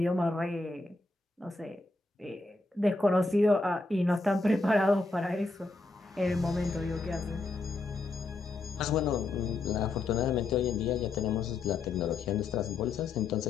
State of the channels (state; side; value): quieter; right; 3.4 dB